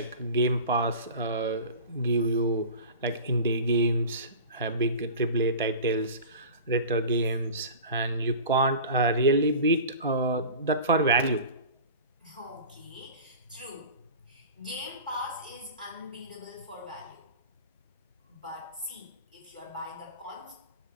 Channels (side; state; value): both; inverted; correlation -0.35